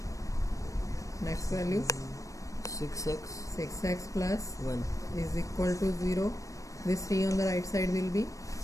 next value 6x plus 1. is equal to 0. This 3 on the right side will be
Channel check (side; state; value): right; late; 0.16 ms